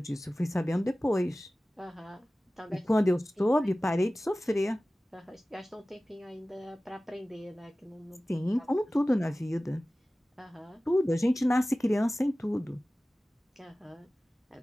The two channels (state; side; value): normal; both; correlation 0.97